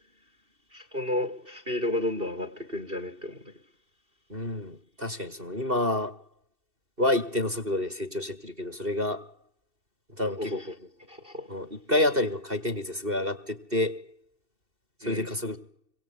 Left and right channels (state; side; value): late; left; 2.7 ms